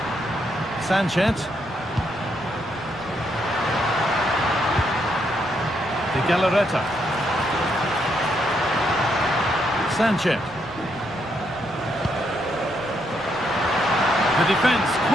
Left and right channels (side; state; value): right; noise; rumble, 21 dB below the sound